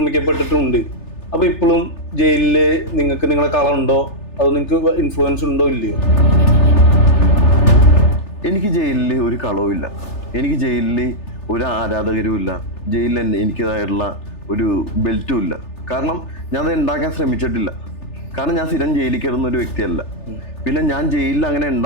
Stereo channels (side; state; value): right; late; 3.4 ms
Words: അപ്പോൾ ഇപ്പോഴും ജയിലിൽ നിങ്ങളെ കളറുണ്ടോ, അത് നിങ്ങൾക്ക് ഇൻഫ്ലുവൻസ് ഉണ്ടോ ഇല്ലയോ? എനിക്ക് ജയിലിൽ ഒരു കളവുമില്ല, എനിക്ക് ജയിലിൽ ഒരു ആരാധകരും ഇല്ല, ജയിലിൽ എനിക്കതായിട്ടുള്ള ഒരു ബെൽറ്റും ഇല്ല. കാരണം ഞാൻ അത് ഉണ്ടാക്കാൻ ശ്രമിച്ചിട്ടില്ല. കാരണം ഞാൻ സ്ഥിരം ജയിലിൽ കയറുന്ന ഒരു വ്യക്തിയല്ല. പിന്നെ ഞാൻ ജയിലിൽ അങ്ങനെ